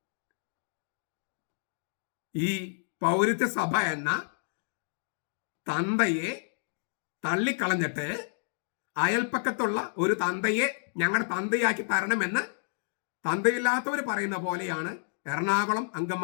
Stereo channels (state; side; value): silent; right; digital silence